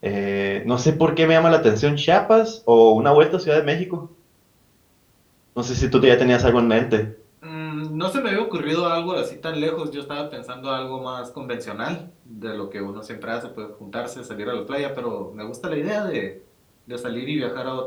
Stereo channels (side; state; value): both; identical; correlation 1.00